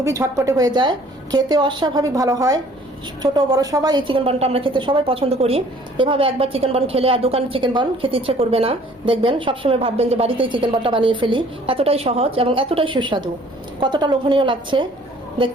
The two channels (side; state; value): both; normal; correlation 0.56